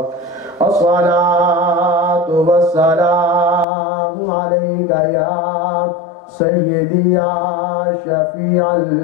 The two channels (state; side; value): drops out; right; at 3.7 s